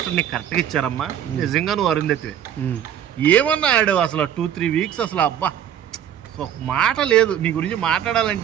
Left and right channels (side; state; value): left; quieter; 10.0 dB